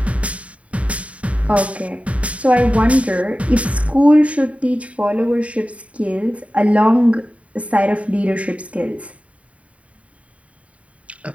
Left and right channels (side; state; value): left; late; 0.066 ms